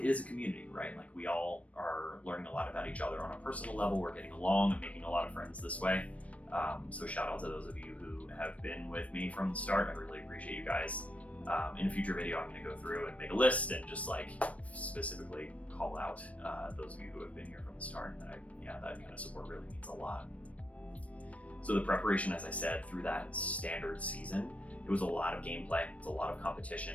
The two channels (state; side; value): late; right; 0.065 ms